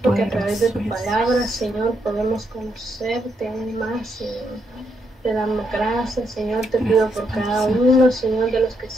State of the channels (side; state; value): both; normal; correlation 0.78